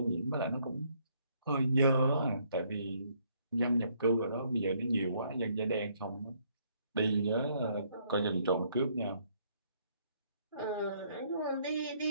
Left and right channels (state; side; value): inverted; both; correlation -0.68